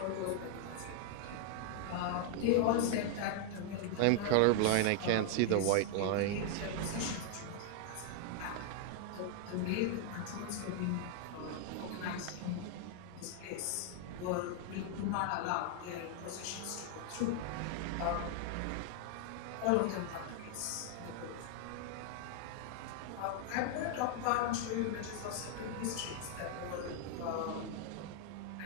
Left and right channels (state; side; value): different; both; correlation 0.00